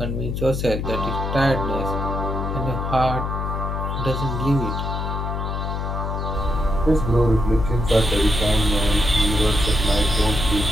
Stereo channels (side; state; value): left; noise; hum, 3 dB below the sound